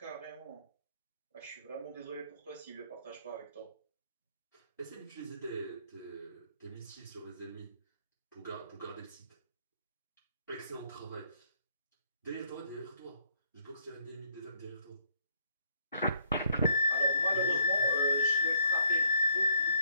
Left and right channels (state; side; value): inverted; both; correlation -0.68